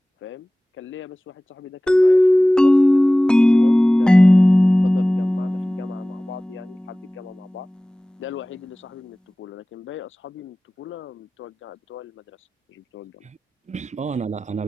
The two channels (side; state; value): both; normal; correlation 0.98